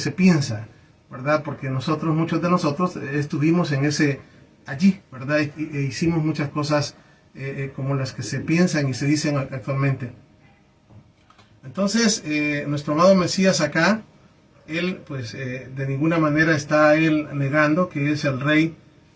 piensa, ¿verdad? Porque muchos de nosotros estuvimos allí, ¿verdad? E hicimos muchas cosas como las que se piensan y se dicen actualmente. Entonces, nuestro amado Mesías acá, él pues de ninguna manera está él negando que es el rey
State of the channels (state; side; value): identical; both; correlation 1.00